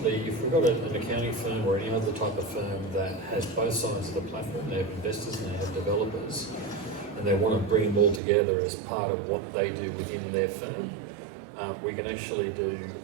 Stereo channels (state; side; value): drops out; left; at 8.2 s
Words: if we've got an accounting firm or any other type of firm that has both sides of the platform, they have investors and they have developers, and they want to bring them all together as part of what they do within their firm, we can actually do